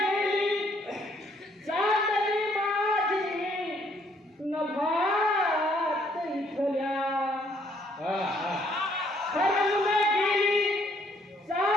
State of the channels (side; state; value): both; normal; correlation 0.67